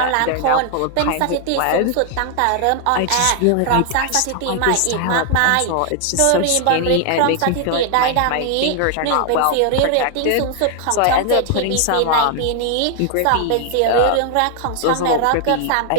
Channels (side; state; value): both; different; correlation 0.00